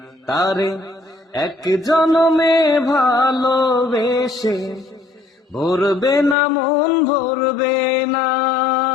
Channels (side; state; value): right; drops out; at 6.4 s